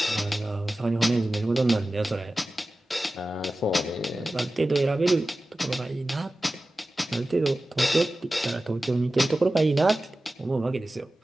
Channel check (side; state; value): both; normal; correlation 0.95